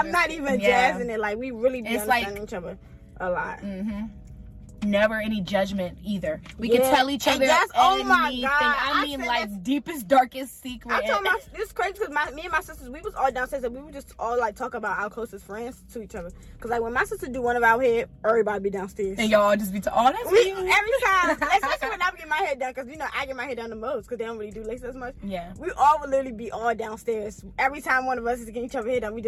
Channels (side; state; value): both; identical; correlation 1.00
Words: not even jazzing it. Like, we really be understanding each other a lot. Never any judgment either. We can tell each other anything. Oh my God. I mean, like, deepest, darkest secret. I told this crazy because me and my sisters, we was all downstairs and we would just all like talk about our closest friends to each other. Because like, when my sister do one of our hair, everybody be downstairs. And y'all just be that's every time. Especially when I get my hair done, because you know I get my hair done the most because they don't really do lace as much. Yeah. We all would literally be all downstairs. Every time one of us is getting each other hair done, we